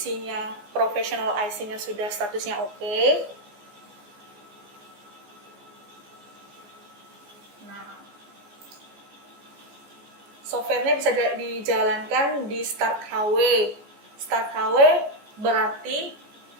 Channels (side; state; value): left; late; 15 ms